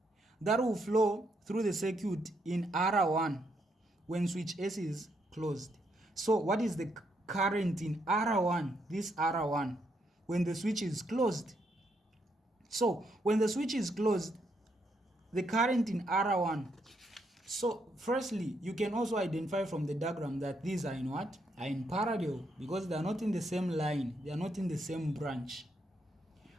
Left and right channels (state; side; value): normal; both; correlation 0.77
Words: that will flow through the circuit in R1 when switch S is closed. So what is the current in R1, this R1, when the switch is closed? So when the switch is closed, the current in R1. So firstly, you can also identify from the diagram that these are in what? Are in parallel, because they are not in the same line, they are not in the same branch.